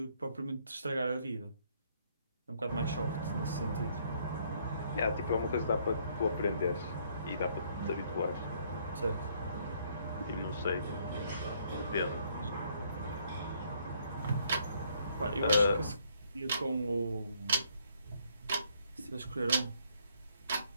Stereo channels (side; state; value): both; inverted; correlation -0.67